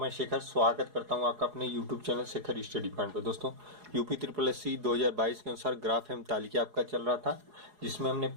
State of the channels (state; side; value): late; left; 4.8 ms